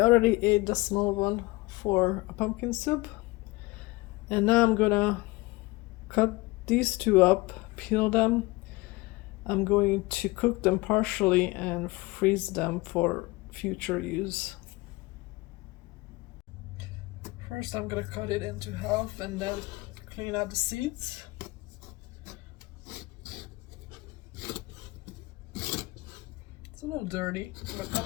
ate the small one for a pumpkin soup, and now I'm gonna cut these two up, peel them. I'm going to cook them partially and freeze them for future use. First, I'm gonna cut it into half and then clean out the seeds. It's a little dirty, but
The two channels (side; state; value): right; quieter; 22.3 dB